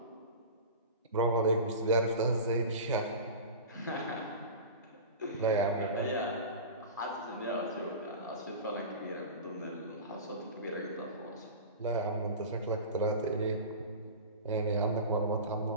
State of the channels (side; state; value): both; inverted; correlation -0.31